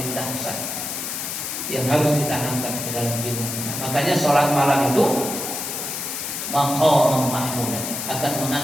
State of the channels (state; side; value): noise; left; hiss, 4 dB below the sound